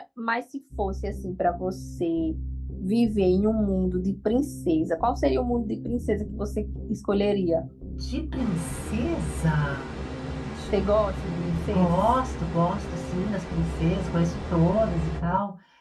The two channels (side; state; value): both; identical; correlation 1.00